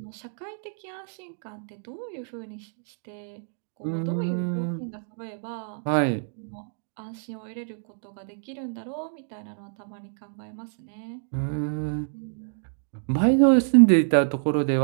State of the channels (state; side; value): silent; left; digital silence